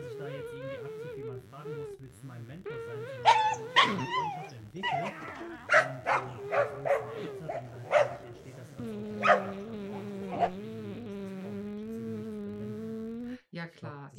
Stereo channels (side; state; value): both; identical; correlation 1.00